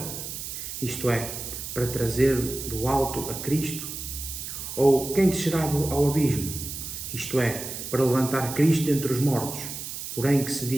isto é, para trazer do alto a Cristo, ou quem descerá ao abismo, isto é, para levantar Cristo dentre os mortos. Porém que se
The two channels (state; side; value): noise; right; hiss, 7 dB below the sound